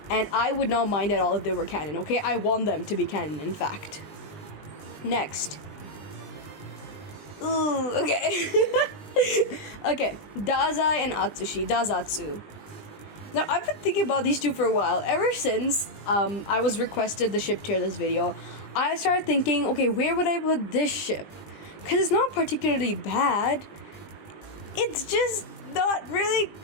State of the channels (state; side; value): late; right; 20 ms